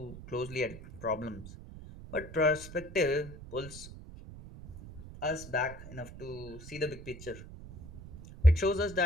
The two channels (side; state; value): right; noise; rumble, 14 dB below the sound